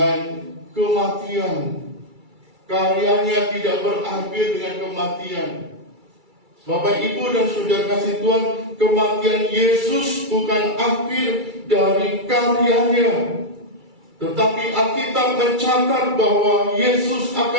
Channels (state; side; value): late; left; 2.3 ms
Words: kematian. Karyanya tidak berakhir dengan kematian. Bapak, Ibu, dan saudara kasih Tuhan, kematian Yesus bukan akhir dari karyanya. Tetapi Alkitab mencatat bahwa Yesus